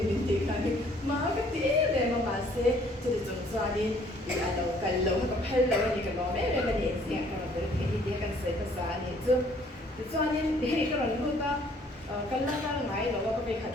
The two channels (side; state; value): both; normal; correlation 0.60